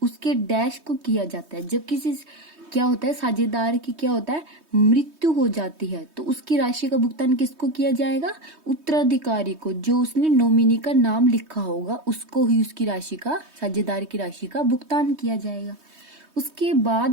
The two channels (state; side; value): late; left; 3.2 ms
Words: उसके डैश को किया जाता है। जब किसी क्या होता है, साझेदार की क्या होता है, मृत्यु हो जाती है, तो उसकी राशि का भुगतान किसको किया जाएगा, उत्तराधिकारी को, जो उसने नॉमिनी का नाम लिखा होगा उसको ही उसकी राशि का, साझेदार की राशि का भुगतान किया जाएगा। उसके